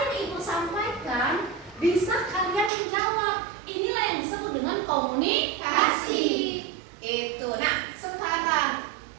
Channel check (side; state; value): left; drops out; at 2.7 s